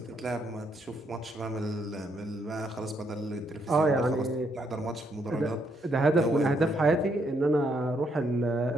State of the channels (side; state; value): both; normal; correlation 0.74